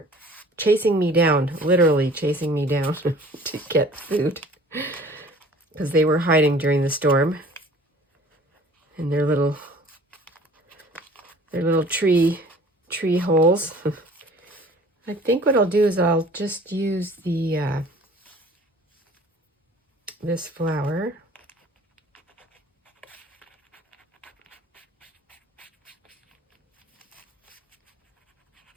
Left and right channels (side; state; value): both; normal; correlation 0.49